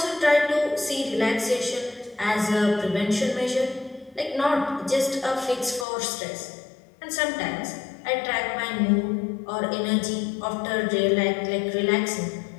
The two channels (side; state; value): right; drops out; at 5.9 s